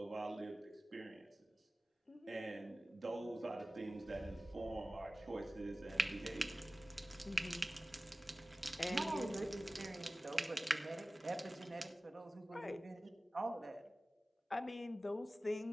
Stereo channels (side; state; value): both; normal; correlation 0.97